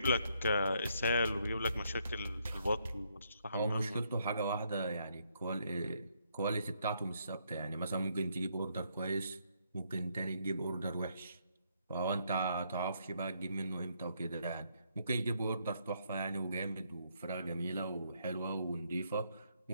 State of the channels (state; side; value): inverted; both; correlation -0.73